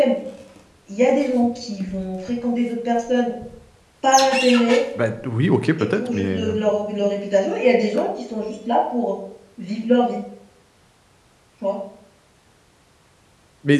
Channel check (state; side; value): identical; both; correlation 1.00